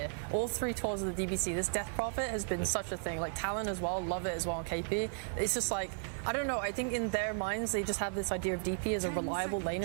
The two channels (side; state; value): left; silent; 55 dB below the other